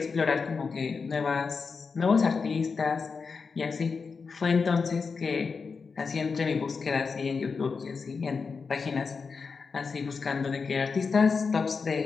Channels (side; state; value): right; quieter; 5.0 dB